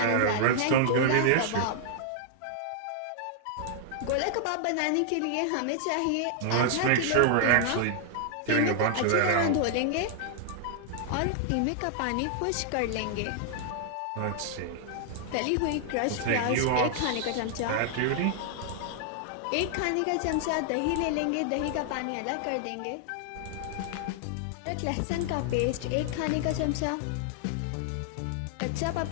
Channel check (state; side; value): different; both; correlation -0.01